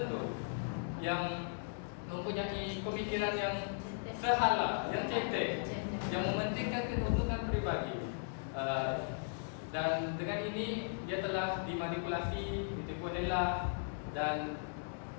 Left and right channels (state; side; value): silent; right; digital silence